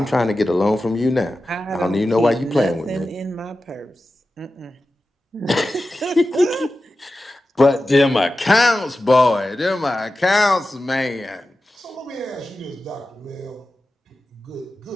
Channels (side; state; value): both; normal; correlation 0.93